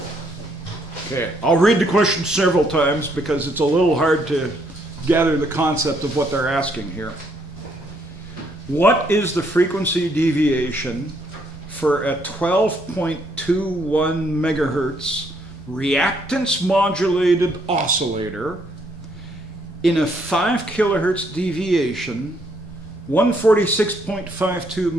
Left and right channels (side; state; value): both; normal; correlation 0.71